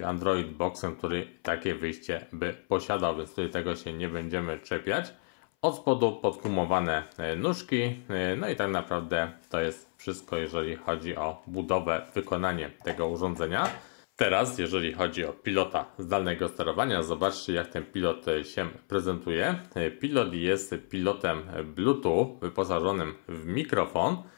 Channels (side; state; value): right; silent; 57 dB below the other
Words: Android Boxem, który takie wyjście by posiadał, więc tutaj tego się nie będziemy czepiać. Od spodu podgumowane nóżki, no i tak naprawdę to jest wszystko, jeżeli chodzi o budowę, wykonanie tego urządzenia. Teraz, jeżeli chodzi o pilota zdalnego sterowania, zobaczcie, jak ten pilot się prezentuje. Pilot jest pilotem Bluetooth wyposażonym w mikrofon.